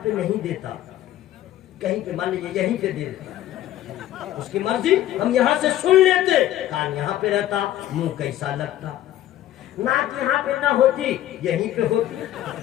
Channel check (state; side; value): quieter; right; 13.1 dB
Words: پہ نہیں دیتا, کہیں پہ مان لیجیے یہیں پہ دے دیتا, اس کی مرضی, ہم یہاں سے سن لیتے. کان یہاں پہ رہتا, منہ کیسا لگتا. ناک یہاں پہ نہ ہوتی, یہیں پہ ہوتی.